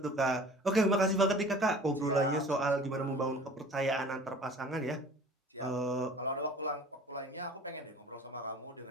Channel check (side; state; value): both; normal; correlation 0.45